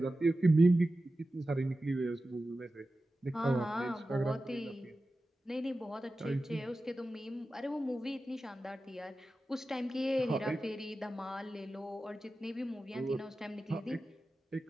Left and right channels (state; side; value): normal; both; correlation 0.94